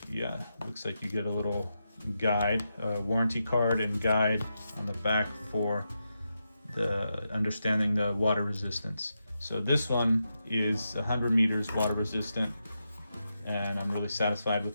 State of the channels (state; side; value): inverted; both; correlation -0.87